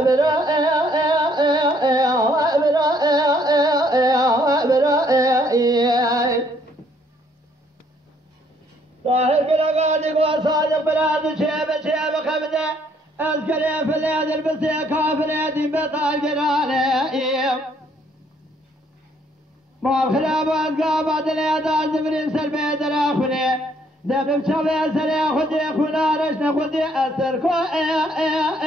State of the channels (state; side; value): normal; both; correlation 0.66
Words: طاهر قلقاتك وصادق بلاد شيب خبده أذكر يا فلاد البسي كافلادي بطال قرانه ما الخلاب والقابات اليدان زمرين سلبيد الأخبرين دبب شوي سري خدي خنا رشنا خدي أثر كو